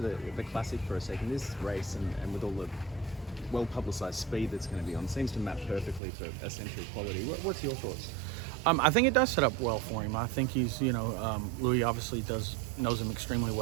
the Classic for a second. This race and with all the well-publicised speed that's going to be on seems to map perfectly for Essential Quality. What's your thoughts? I think it does set up well for him. I think he's, Louis obviously knows him extremely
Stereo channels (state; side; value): drops out; left; at 6.0 s